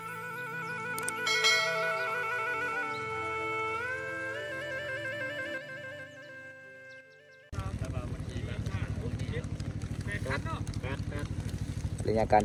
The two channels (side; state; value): both; identical; correlation 1.00